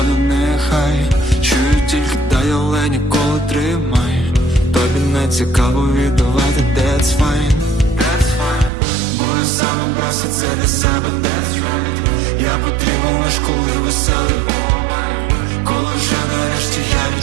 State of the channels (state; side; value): drops out; left; at 8.7 s